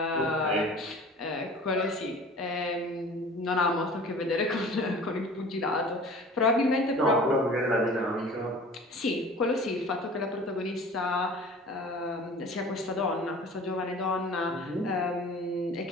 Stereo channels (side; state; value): both; normal; correlation 0.43